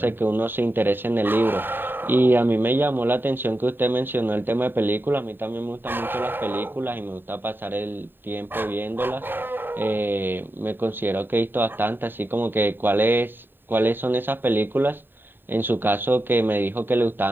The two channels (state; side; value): late; left; 0.095 ms